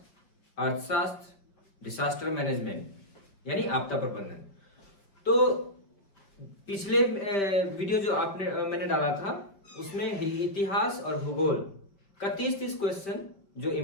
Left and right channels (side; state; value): right; late; 5.1 ms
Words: अर्थशास्त्र, डिसास्टर मैनेजमेंट यानी आपदा प्रबंधन। तो पिछले वीडियो जो मैंने डाला था उसमें इतिहास और भूगोल का 30 क्वेश्चन जो